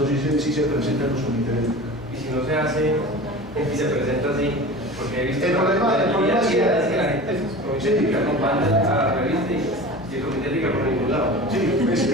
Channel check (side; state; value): left; noise; hum, 20 dB below the sound